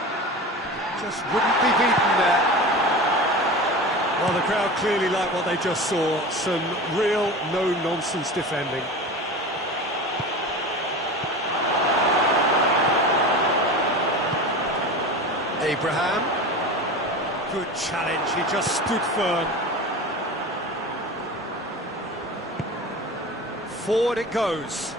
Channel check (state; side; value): normal; both; correlation 0.31